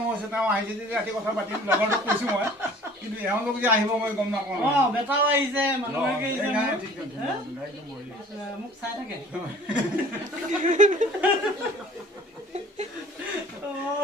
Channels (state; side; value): normal; both; correlation 0.49